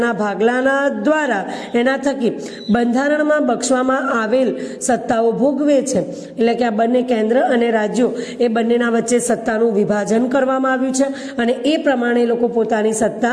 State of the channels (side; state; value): both; identical; correlation 1.00